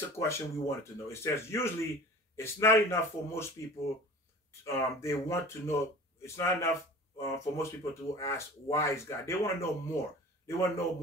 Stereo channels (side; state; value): both; normal; correlation 0.40